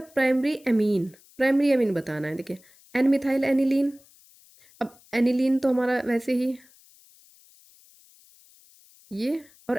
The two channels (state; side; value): noise; left; hiss, 28 dB below the sound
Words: primary amine. Primary amine बताना है। देखिए एन मिथाइल एनिलीन। अब एनिलीन तो हमारा वैसे ही ये,